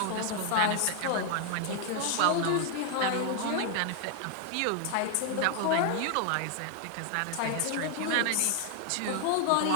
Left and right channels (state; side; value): different; both; correlation 0.00